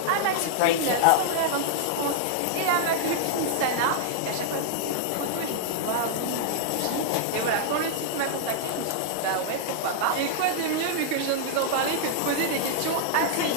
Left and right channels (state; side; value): different; both; correlation -0.01